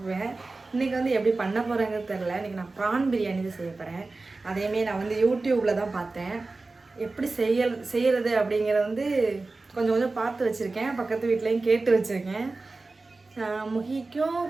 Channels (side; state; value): left; quieter; 3.5 dB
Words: இன்றைக்கி எப்படி பண்ண போகிறேங்கிறது தெரில. இன்றைக்கி நான் ப்ரான் பிரியாணி தான் செய்ய போகிறேன். அதேமாரி நான் யூடியூப்பில் தான் பார்த்தேன். எப்படி செய்கிறது அப்படிங்கிறத கொஞ்சம் கொஞ்சம் பார்த்து வச்சுருக்கேன். பக்கத்து வீட்லேயும் கேட்டு வச்சுருக்கேன். முகிக்கும்